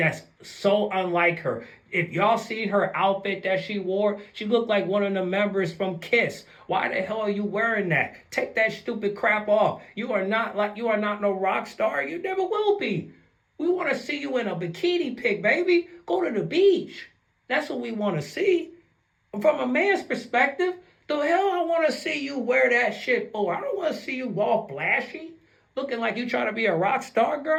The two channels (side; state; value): both; identical; correlation 1.00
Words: so unlike her. If y'all seen her outfit that she wore, she looked like one of the members from Kiss. Why the hell are you wearing that? Take that stupid crap off. You are not no rock star. You never will be. We want to see you in a bikini pic, baby. Go to the beach. That's what we want to see. From a man's perspective, the hell I want to see you wear that shit for? I don't want to see you all flashy, looking like you trying to be a rock star, girl.